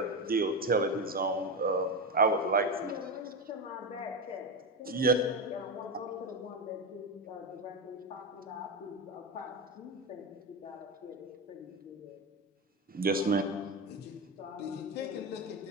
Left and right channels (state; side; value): normal; both; correlation 0.15